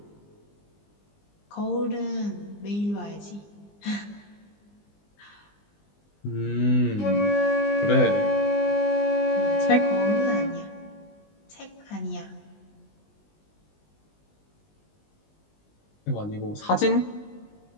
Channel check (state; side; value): late; right; 20 ms